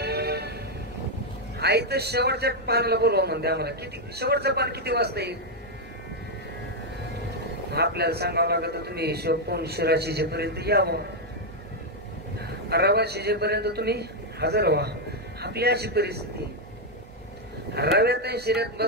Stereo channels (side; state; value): both; normal; correlation 0.01